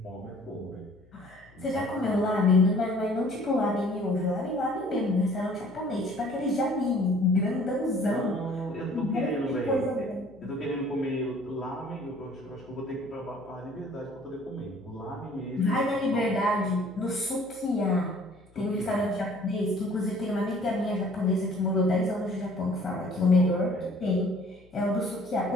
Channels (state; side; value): noise; left; hum, 28 dB below the sound